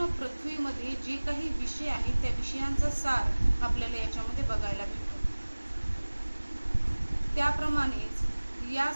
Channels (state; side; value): inverted; both; correlation -1.00